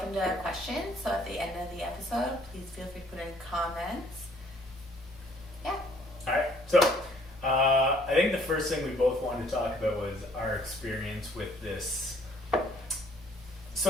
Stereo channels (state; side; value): normal; both; correlation 0.60